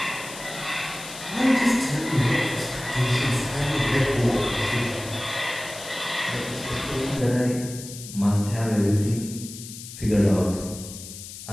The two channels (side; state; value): left; noise; hiss, 12 dB below the sound